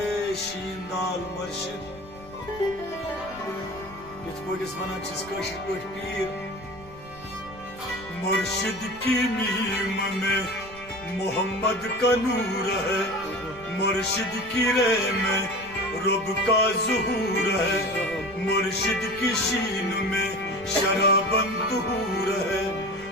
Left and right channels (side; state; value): left; noise; rumble, 20 dB below the sound